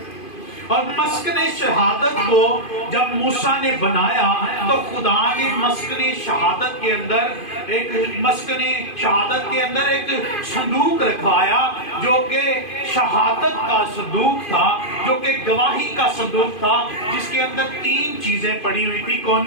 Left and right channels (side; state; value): right; late; 2.5 ms